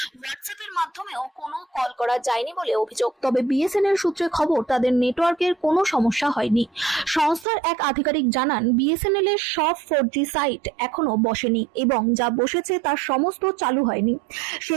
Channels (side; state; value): left; drops out; at 7.5 s